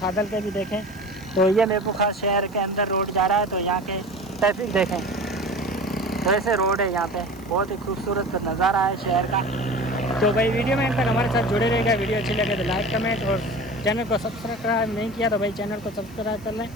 के भी देखें। तो ये मीरपुर खास शहर के अंदर रोड जा रहा है। तो यहाँ के ट्रैफिक देखें, तो ऐसे रोड है यहाँ पे। बहुत ही खूबसूरत नज़ारा है शहर का। तो भाई वीडियो में तक हमारे साथ जुड़े रहेगा। वीडियो अच्छी लगे तो लाइक कमेंट, और चैनल को सब्सक्राइब नहीं किया तो भाई चैनल को सब्सक्राइब कर लें।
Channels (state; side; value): noise; right; hiss, 26 dB below the sound